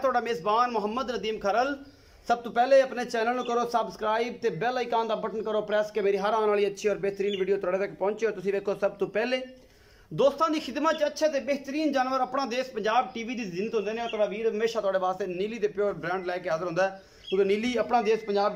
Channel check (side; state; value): both; identical; correlation 1.00